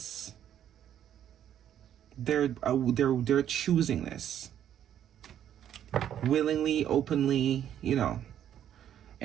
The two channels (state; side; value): quieter; left; 10.3 dB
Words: They're choosing this. Willingly, openly, you know,